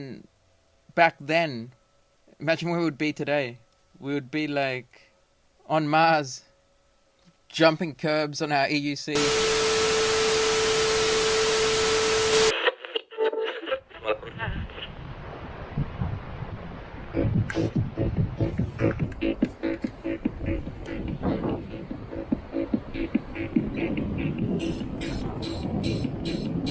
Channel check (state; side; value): identical; both; correlation 1.00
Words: back then. Imagine where we would be today. We would be like on Mars. jumping curbs on our EUC.